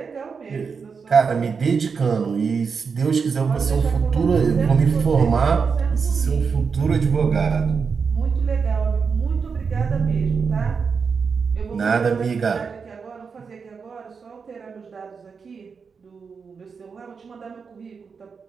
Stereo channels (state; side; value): quieter; left; 5.6 dB